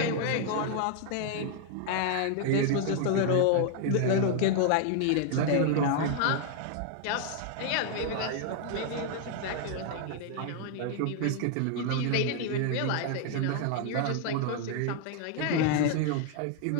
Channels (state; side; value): different; both; correlation 0.00